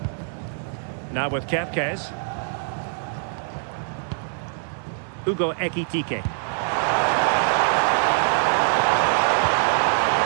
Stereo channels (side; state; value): left; silent; digital silence